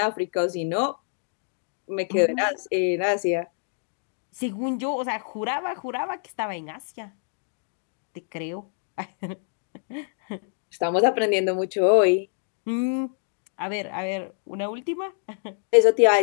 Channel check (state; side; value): silent; right; digital silence